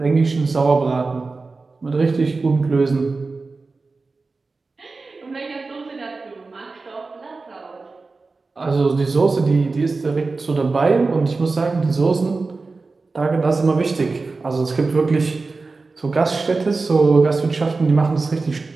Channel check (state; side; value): quieter; left; 3.9 dB